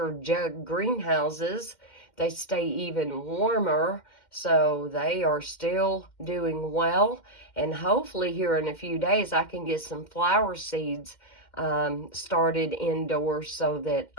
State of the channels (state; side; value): late; right; 2.1 ms